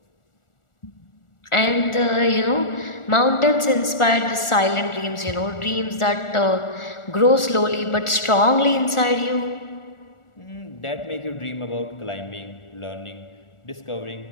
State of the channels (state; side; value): late; right; 1.4 ms